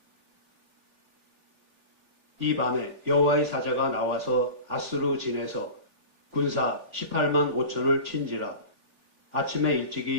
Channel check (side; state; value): left; late; 3.4 ms